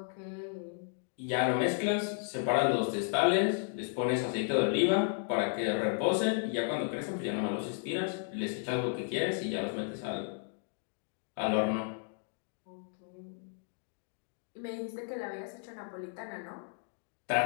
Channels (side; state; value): right; silent; 55 dB below the other